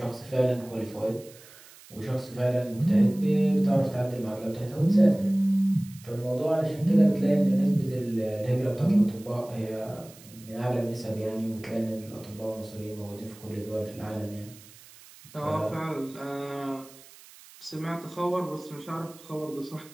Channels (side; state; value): right; noise; hiss, 22 dB below the sound